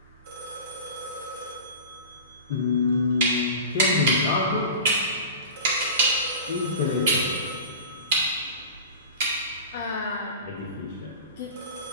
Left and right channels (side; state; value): both; inverted; correlation -0.34